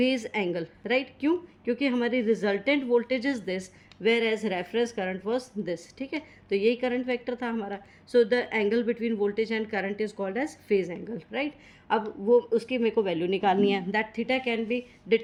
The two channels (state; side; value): identical; both; correlation 1.00